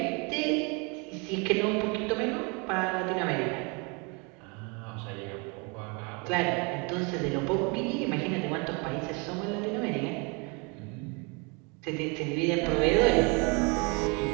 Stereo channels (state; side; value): quieter; left; 31.5 dB